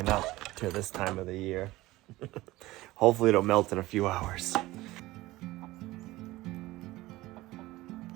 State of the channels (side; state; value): left; quieter; 18.4 dB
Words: up to this time of the year. Hopefully it'll melt in a few hours.